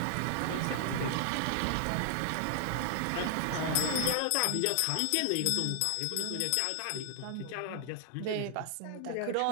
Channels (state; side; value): different; both; correlation 0.00